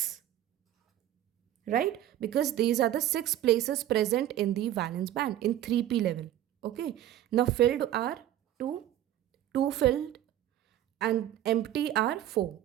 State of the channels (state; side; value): quieter; left; 12.3 dB